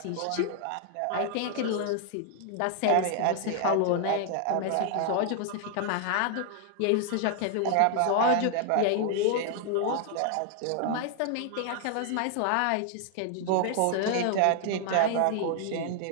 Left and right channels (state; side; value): different; both; correlation 0.00